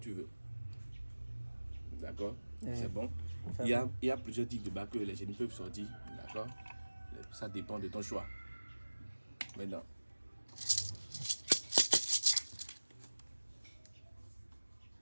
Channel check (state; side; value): inverted; both; correlation -1.00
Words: veux. D'accord. C'est bon. Il y a plusieurs types de bagues que les génies peuvent sortir. D'accord. Ça dépend de ton choix. Maintenant.